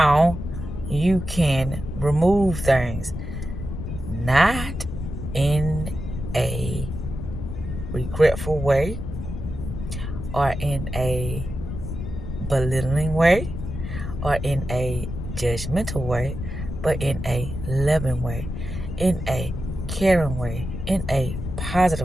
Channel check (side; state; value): left; noise; rumble, 6 dB below the sound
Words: you can remove things. Not in a regretful way or in a belittling way or in a judgmental way, but in a loving way, in a caring way, in a